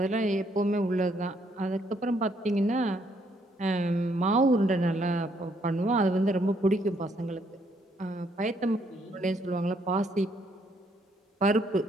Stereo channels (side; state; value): both; normal; correlation 0.70